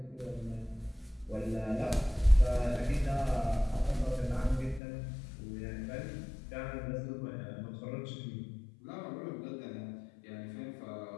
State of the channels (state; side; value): drops out; right; at 4.8 s